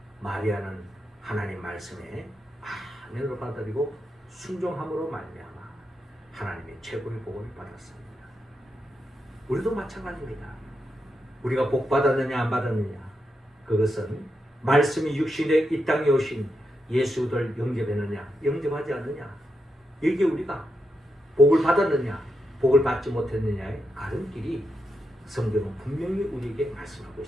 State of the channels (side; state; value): both; normal; correlation 0.85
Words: 마리아는 하나님 말씀에 아멘으로 받아들이고 순종함으로 말미암아 하나님의 최고의 복을 받았습니다. 우리도 마찬가지입니다. 우리가 복 받았느냐 안 받았느냐, 그것은 말씀이 육신에 이 땅에 오신 예수를 영접했느냐 영접하지 않느냐, 이게 우리가 복을 받았느냐 복을 받지 못했느냐의 가름길이 성경은 분명히 우리에게 말씀하고